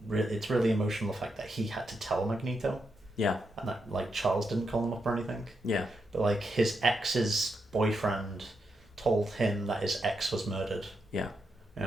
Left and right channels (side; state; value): both; normal; correlation 0.83